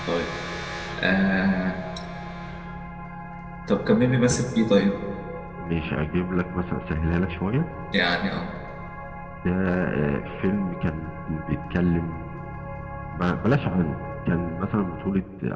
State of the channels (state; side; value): identical; both; correlation 1.00